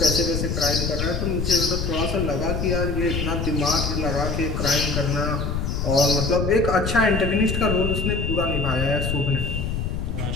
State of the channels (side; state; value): left; noise; rumble, 2 dB below the sound